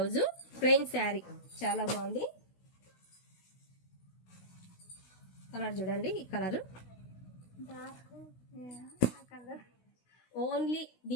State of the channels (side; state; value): right; late; 16 ms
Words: plain sari చాలా బాగుంది. కలర్ చూడండి, ఈ కలర్. ఓన్లీ